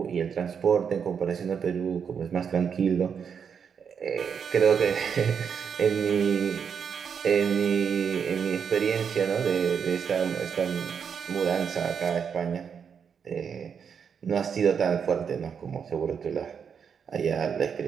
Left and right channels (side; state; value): left; quieter; 7.0 dB